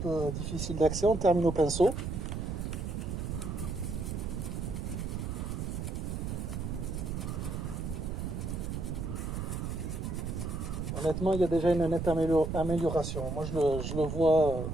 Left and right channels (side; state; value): right; noise; rumble, 3 dB below the sound